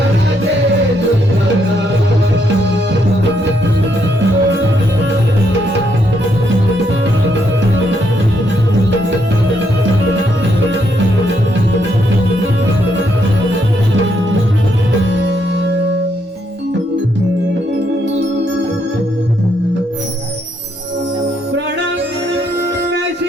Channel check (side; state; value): both; normal; correlation 0.75